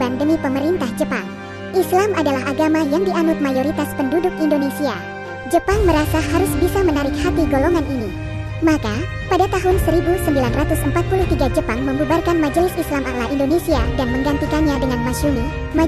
demi pemerintah Jepang. Islam adalah agama yang dianut mayoritas penduduk Indonesia. Jepang merasa harus bisa menarik hati golongan ini. Maka, pada tahun 1943 Jepang membubarkan Majelis Islam A'la Indonesia dan menggantikannya dengan Masyumi,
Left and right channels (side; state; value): both; identical; correlation 1.00